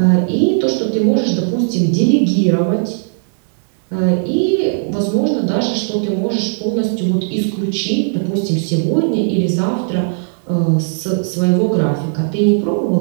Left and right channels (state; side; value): silent; left; digital silence